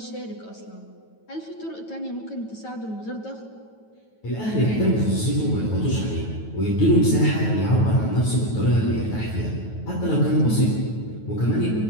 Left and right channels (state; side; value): late; right; 9.2 ms